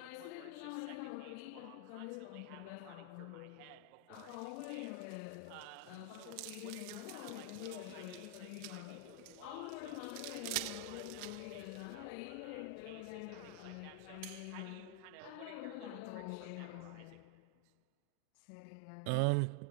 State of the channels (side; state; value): both; different; correlation 0.00